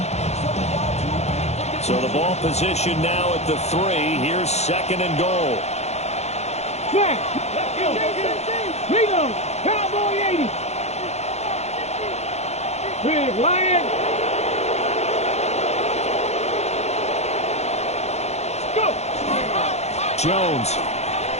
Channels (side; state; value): right; late; 0.32 ms